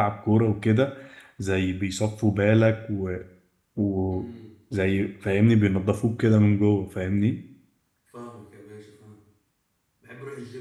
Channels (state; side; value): identical; both; correlation 1.00